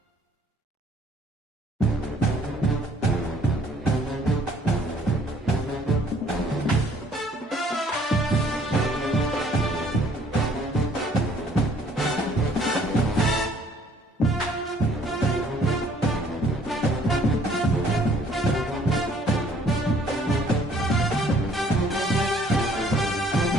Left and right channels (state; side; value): normal; both; correlation 0.60